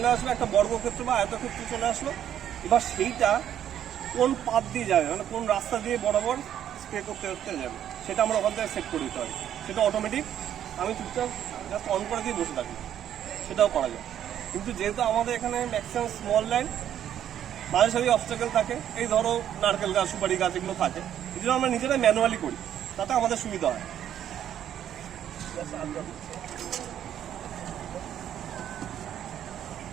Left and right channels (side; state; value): left; quieter; 10.4 dB